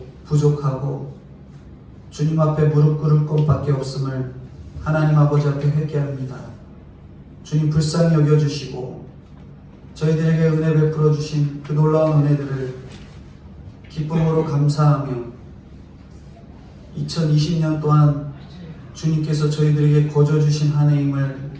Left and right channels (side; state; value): both; identical; correlation 1.00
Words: 부족하고 주님 앞에 무릎 꿇을 것밖에 없음을 하나님 아버지 앞에 회개합니다. 주님 불쌍히 여겨주시고 저희들에게 은혜 베풀어 주신 그 놀라운 은혜들을 기쁨으로 감사하며 2020년 동안 주님께서 저희들에게 거저주신 한 해임을